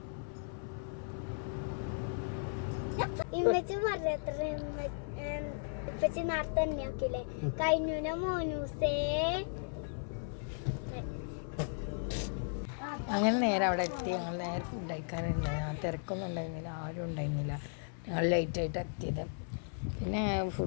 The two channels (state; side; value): silent; right; 54 dB below the other